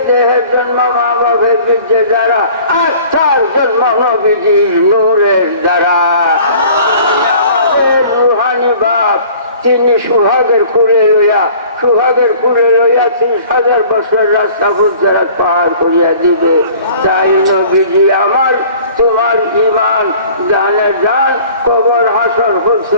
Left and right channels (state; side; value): inverted; both; correlation -0.48